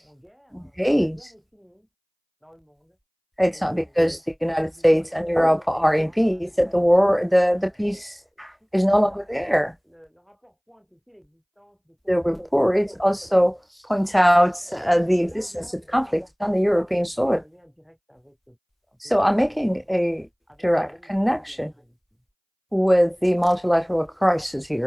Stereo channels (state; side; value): identical; both; correlation 1.00